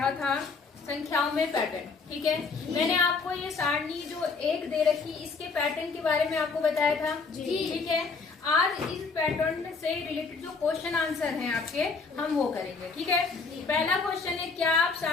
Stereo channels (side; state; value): right; quieter; 4.6 dB